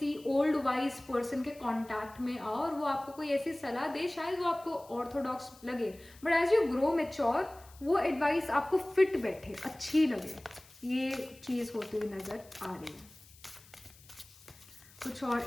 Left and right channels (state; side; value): noise; left; hiss, 24 dB below the sound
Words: ओल्ड वाइज पर्सन के कांटेक्ट में आओ और वो आपको कोई ऐसी सलाह दे, शायद वो आपको ऑर्थोडॉक्स लगे, but as you grow mature वो एडवाइस आपको फिट बैठे, अच्छी लगे, ये चीज़ होती हुई नज़र आ रही है। कुछ